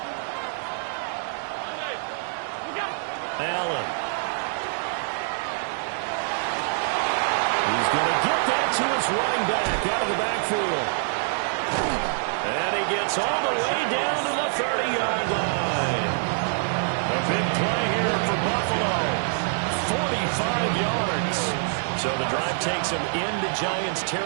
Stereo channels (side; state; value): left; silent; digital silence